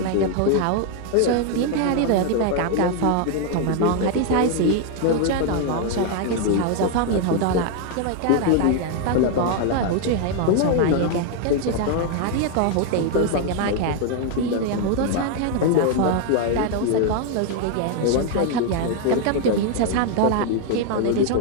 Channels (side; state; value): both; different; correlation 0.00